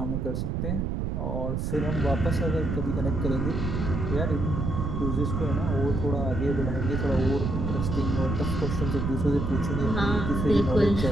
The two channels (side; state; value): right; noise; rumble, 1 dB below the sound